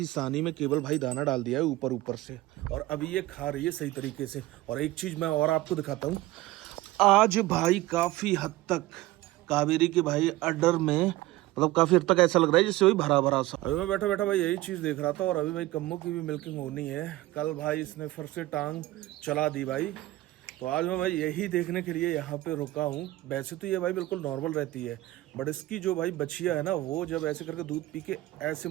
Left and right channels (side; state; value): left; quieter; 17.6 dB